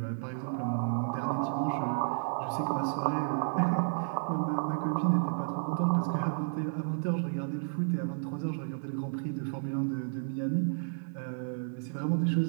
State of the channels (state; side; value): silent; left; digital silence